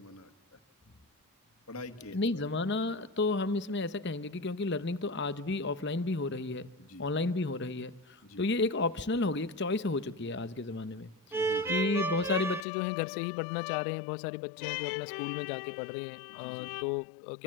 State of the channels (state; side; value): drops out; right; at 12.7 s